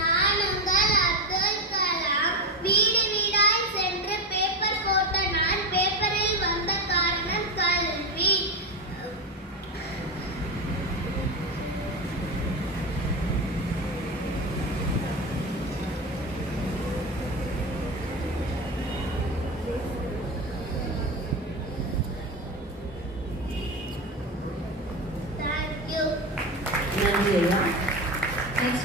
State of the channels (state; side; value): normal; both; correlation 0.18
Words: உங்கள் அப்துல் கலாம். வீடு வீடாய் சென்று பேப்பர் போட்ட நான். பேப்பரில் வந்த காரணம் கல்வி. Thank you. நன்றி ஐயா. Next